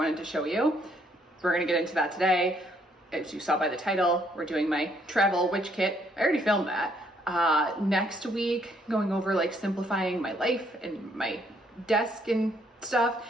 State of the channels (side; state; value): both; normal; correlation 0.69